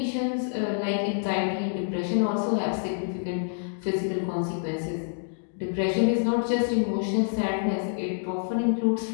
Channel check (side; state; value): right; silent; digital silence